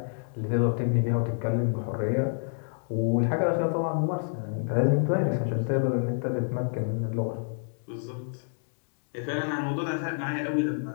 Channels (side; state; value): right; silent; digital silence